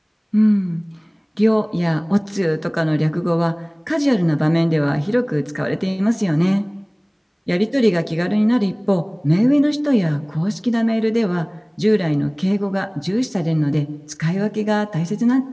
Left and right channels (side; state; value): both; identical; correlation 1.00